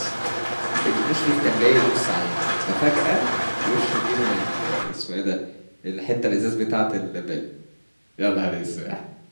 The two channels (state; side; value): inverted; both; correlation -1.00